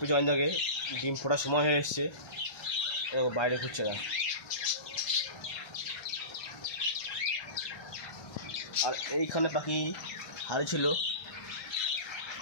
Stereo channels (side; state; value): right; late; 1.2 ms